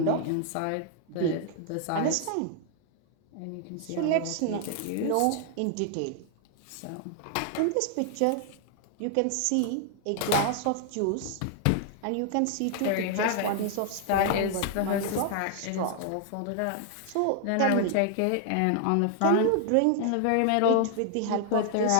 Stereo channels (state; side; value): different; both; correlation 0.00